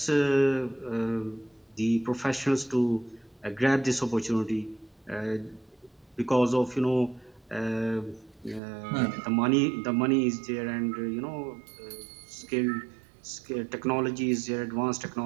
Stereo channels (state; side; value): drops out; left; at 8.6 s